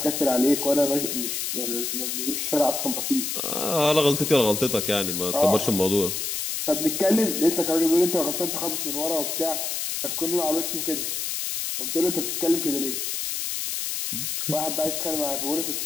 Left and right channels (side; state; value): left; noise; hiss, 2 dB below the sound